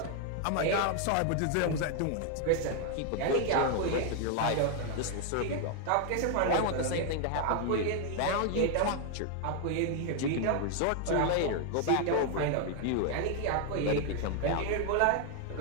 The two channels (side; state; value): both; different; correlation 0.00